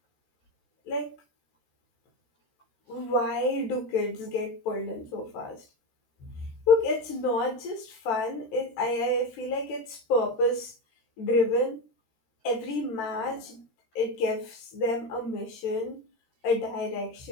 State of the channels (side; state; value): right; late; 14 ms